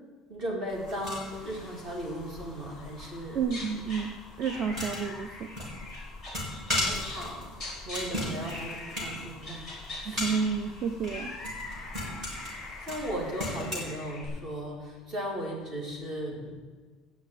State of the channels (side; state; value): both; normal; correlation 0.44